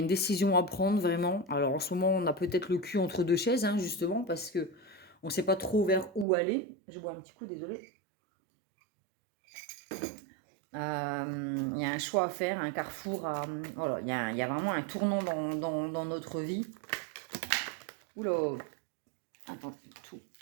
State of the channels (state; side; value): drops out; left; at 6.2 s